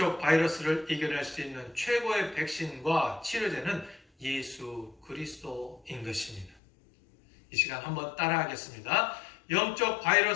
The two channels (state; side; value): drops out; right; at 6.6 s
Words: 바이러스를 이겨낼 수 있는 최고의 백신과 치료제는 예수 그리스도인 것입니다. 이 시간 한번 따라하겠습니다. 영적